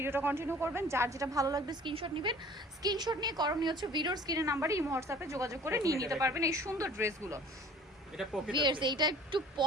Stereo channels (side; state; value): both; normal; correlation 0.48